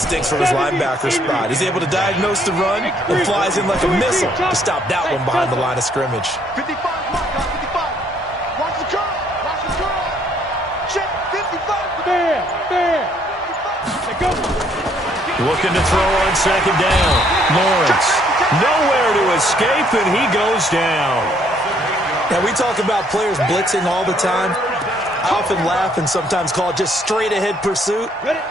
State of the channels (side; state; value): both; normal; correlation 0.66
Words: from his linebacker spot. He's able to diagnose the run and flies in like a missile to stop that one behind the line of scrimmage. 55, Watch the curl. Check 55. There. Go. Looking to throw on second down. Lawrence. Nowhere to escape, and he goes down. Now, we talk about players blitzing all the time. I often laugh and sometimes call it just straight-ahead pursuit.